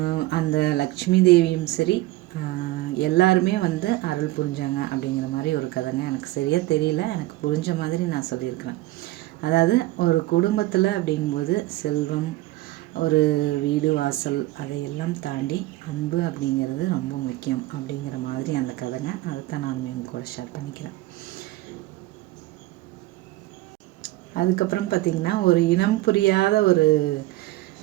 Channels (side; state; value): left; quieter; 17.8 dB